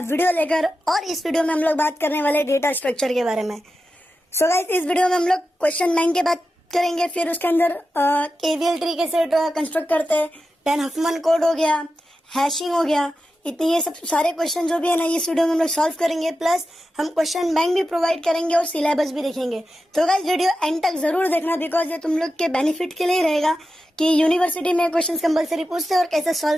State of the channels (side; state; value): both; normal; correlation 0.91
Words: वीडियो लेकर। और इस वीडियो में हम लोग बात करने वाले डेटा स्ट्रक्चर के बारे में। सो गाइस, इस वीडियो में हम लोग क्वेश्चन बैंक की बात करेंगे, फिर उसके अंदर केवीएल ट्री कैसे कंस्ट्रक्ट करते हैं, देन हफमन कोड हो गया, हैशिंग हो गया, इतने ये सब सारे क्वेश्चन जो भी है ना इस वीडियो में हम लोग सॉल्व करेंगे। प्लस हम क्वेश्चन बैंक भी प्रोवाइड करेंगे और सिलेबस भी देखेंगे। तो गाइस वीडियो एंड तक जरूर देखना, बिकॉज ये तुम लोग के बेनिफिट के लिए ही रहेगा कि यूनिवर्सिटी में क्वेश्चन कंपलसरी पूछते हैं और कैसे